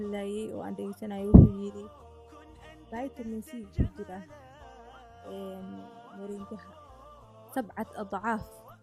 oo aan dhegeysanayay, wuxuu yiri vitamin C ku jira moringaha 7 adcaaf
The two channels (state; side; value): identical; both; correlation 1.00